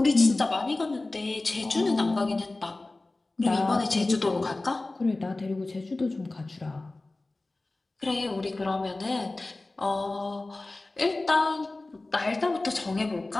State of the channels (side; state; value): right; quieter; 3.0 dB